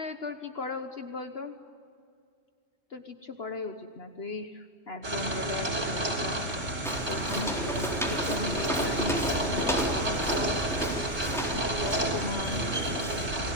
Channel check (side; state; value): both; normal; correlation 0.04